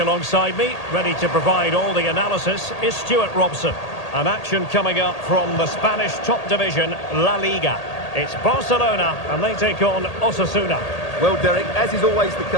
alongside me, ready to provide all the analysis, is Stuart Robson. An action coming up from the Spanish top division, La Liga. It's Barcelona, and they take on Osasuna. Well, Derek, as is always the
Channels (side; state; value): right; late; 1.8 ms